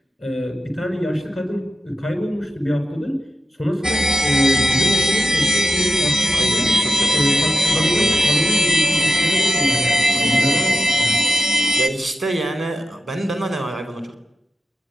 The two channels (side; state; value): both; normal; correlation 0.89